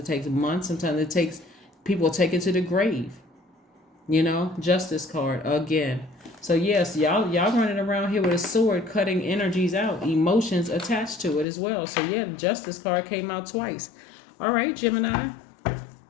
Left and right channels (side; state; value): right; drops out; at 11.5 s